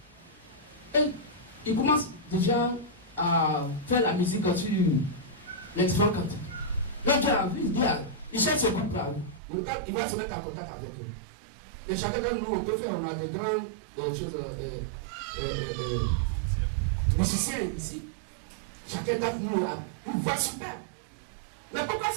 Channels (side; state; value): left; drops out; at 9.4 s